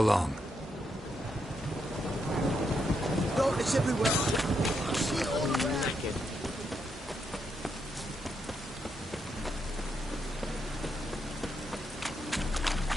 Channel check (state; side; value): normal; both; correlation 0.80